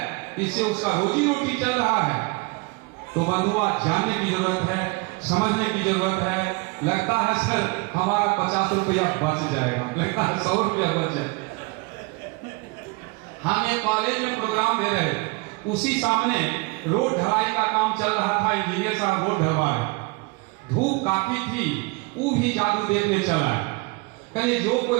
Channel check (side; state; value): left; quieter; 26.9 dB